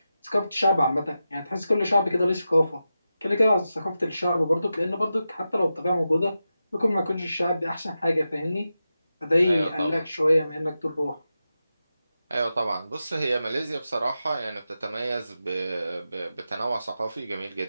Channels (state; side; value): inverted; both; correlation -0.91